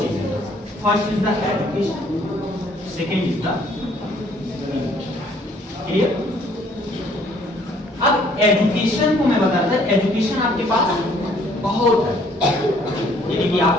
first is the education, second is the, clear? अब एजुकेशन को मैं बताता हूं, एजुकेशन आपके पास बहुत है, यानी कि आप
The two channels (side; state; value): both; normal; correlation 0.61